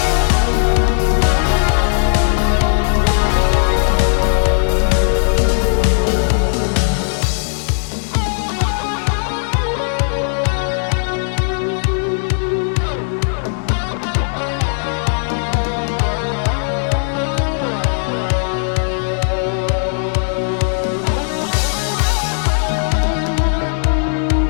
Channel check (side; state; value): right; silent; 68 dB below the other